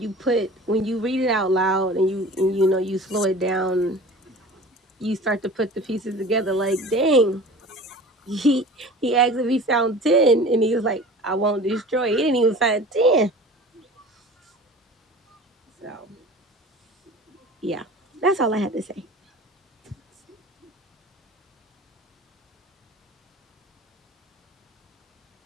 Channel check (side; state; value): both; normal; correlation 0.40